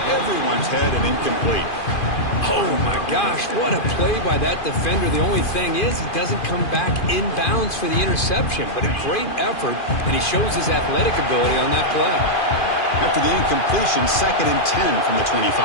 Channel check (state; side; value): late; right; 2.4 ms